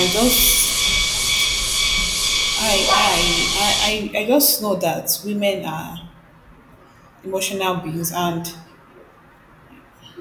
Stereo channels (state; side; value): identical; both; correlation 1.00